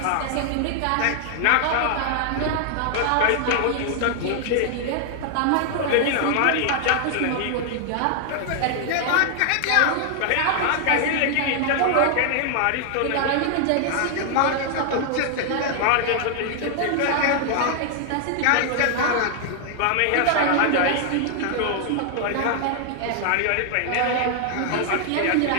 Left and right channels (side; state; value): both; different; correlation 0.00